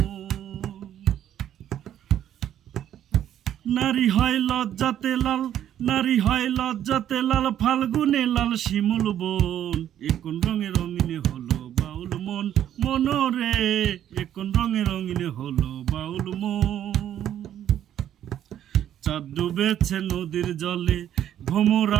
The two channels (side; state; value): left; quieter; 10.9 dB